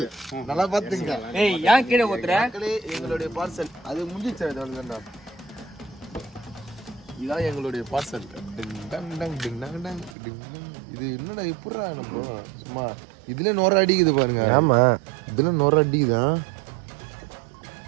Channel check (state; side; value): drops out; left; at 10.2 s